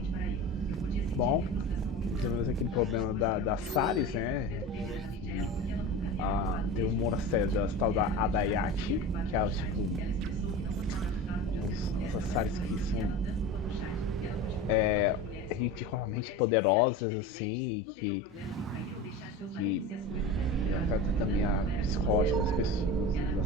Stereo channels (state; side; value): normal; both; correlation 0.30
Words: Bom, tivemos aquele problema da Saris, né? Tem um monastério da tal da Adayati, que é tipo... Os Saris que são... ridiculamente poderosas, assim, que afeta também a psicológica das pessoas,